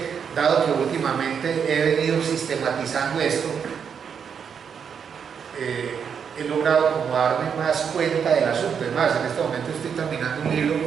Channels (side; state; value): left; quieter; 7.1 dB